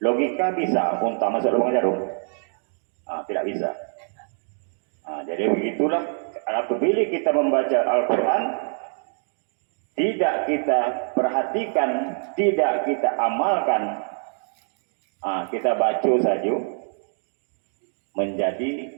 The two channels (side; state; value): left; silent; digital silence